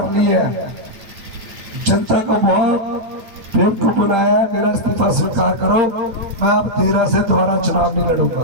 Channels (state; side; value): late; left; 9.1 ms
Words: लिया है, जनता को बहुत बेवकूफ बनाया है, मेरा इस्तीफा स्वीकार करो, मैं अब 13 से दोबारा चुनाव नहीं